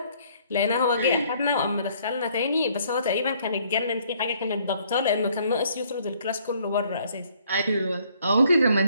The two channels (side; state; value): both; inverted; correlation -0.63